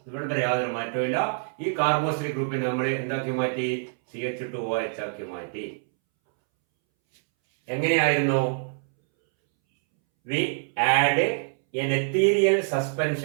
ഇവിടെ യാതൊരു മാറ്റമില്ല. ഈ കാർബോക്സിൽ ഗ്രൂപ്പിനെ നമ്മൾ എന്താക്കി മാറ്റി? CH2OH ആക്കി മാറ്റി. എങ്ങനെയായിരുന്നു? We add an ethereal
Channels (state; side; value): silent; left; 61 dB below the other